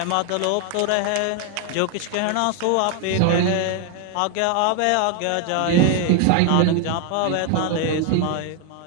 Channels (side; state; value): both; different; correlation 0.00